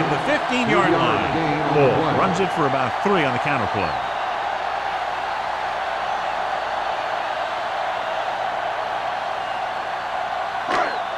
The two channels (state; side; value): identical; both; correlation 1.00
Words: the 15-yard line. Ball runs it for about 3 on the counter play.